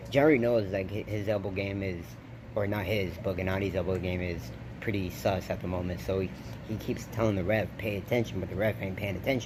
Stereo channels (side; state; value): both; identical; correlation 1.00